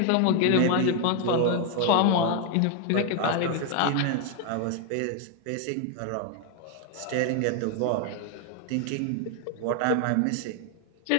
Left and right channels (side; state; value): both; different; correlation 0.01